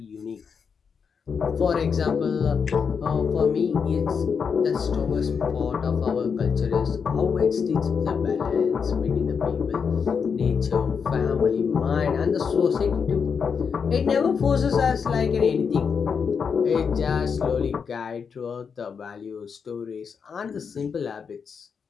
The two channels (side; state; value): right; quieter; 6.2 dB